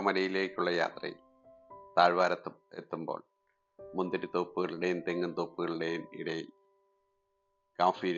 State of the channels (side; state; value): both; identical; correlation 1.00